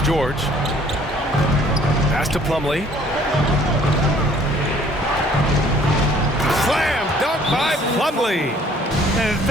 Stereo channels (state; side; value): normal; both; correlation 0.57